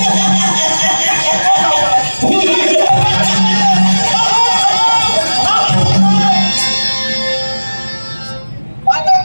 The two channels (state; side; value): inverted; both; correlation -1.00